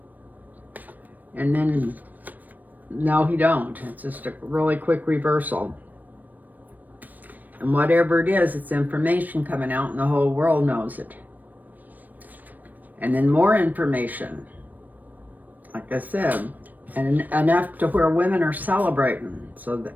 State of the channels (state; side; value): late; left; 0.085 ms